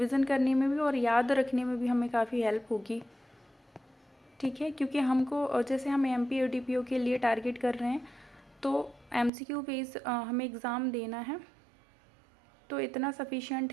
करने में भी और याद रखने में भी हमें काफ़ी हेल्प होगी। ठीक है, क्योंकि हमको जैसे हम एमपी और डीपीओ के लिए टारगेट कर रहे हैं, तो एमसीक्यू बेस हमें एग्ज़ाम देना है, तो इतना सफिशिएंट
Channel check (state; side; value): drops out; left; at 9.3 s